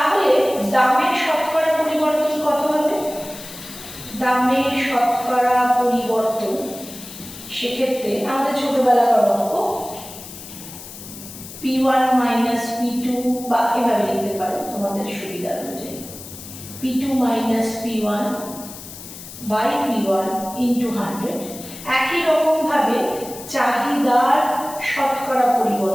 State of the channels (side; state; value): left; noise; hiss, 14 dB below the sound